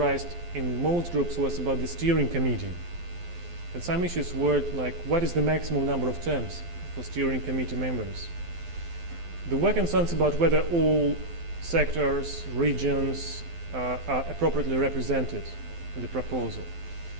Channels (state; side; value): late; left; 12 ms